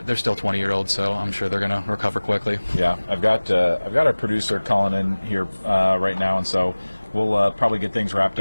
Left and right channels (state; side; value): inverted; both; correlation -1.00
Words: still 20-year-olds, so I'm sure they're going to recover quickly. Yeah, I've got our producer calling in here right now, and so we'll probably get things wrapped